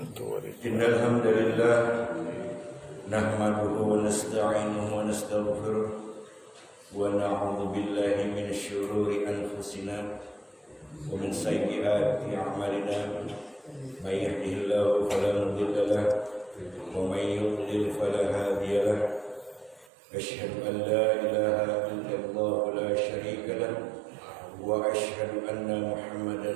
Innal hamdalillah nahmaduhu wa nasta'inuhu wa nastaghfiruh wa na'udzu billahi min syururi anfusina wa min sayyiati a'malina. May yahdihillahu fala mudilla lahu wa may yudlil fala hadiya lahu. Asyhadu an la ilaha illallah la syarika lahu wa asyhadu anna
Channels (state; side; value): drops out; left; at 19.9 s